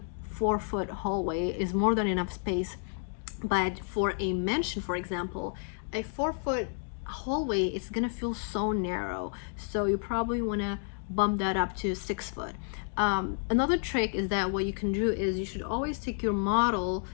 4-foot hallway is more than enough space. But for a mansion, for example, a 4-foot hallway is gonna feel so narrow, so you probably want to bump that up to 6 foot. Another trick is that what you can do is you should always take your model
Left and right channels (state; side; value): silent; right; 56 dB below the other